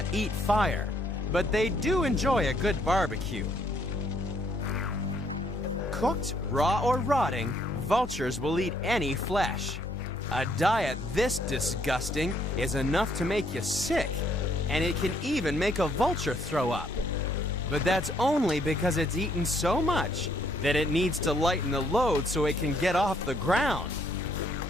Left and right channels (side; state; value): both; normal; correlation 0.68